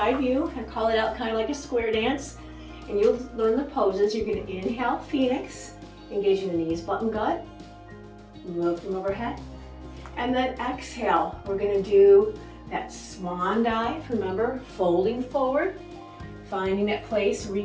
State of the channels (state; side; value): identical; both; correlation 1.00